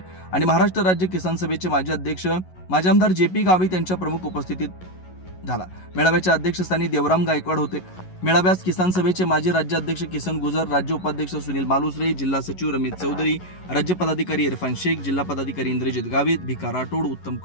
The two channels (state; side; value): late; right; 11 ms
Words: आणि महाराष्ट्र राज्य किसान सभेचे माजी अध्यक्ष माजी आमदार JP गावित यांच्या प्रमुख उपस्थितीत झाला। मेळाव्याच्या अध्यक्षस्थानी देवराम गायकवाड होते। मेळाव्यास किसान सभेचे माजी राज्याध्यक्ष किसन गुजर, राज्य उपाध्यक्ष सुनील मालुसरे, जिल्हा सचिव रमेश चौधरी, राज्य पदाधिकारी इरफान शेख, जिल्हा पदाधिकारी इंद्रजित गावित, भिका राठोड, उत्तम